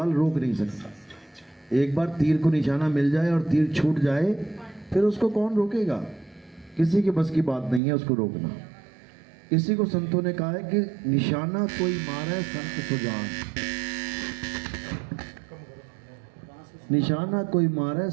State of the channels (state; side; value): drops out; left; at 7.8 s